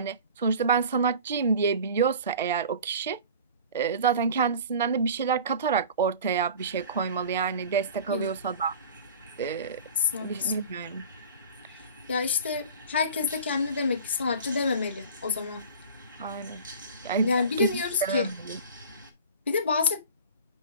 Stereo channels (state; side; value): inverted; both; correlation -0.40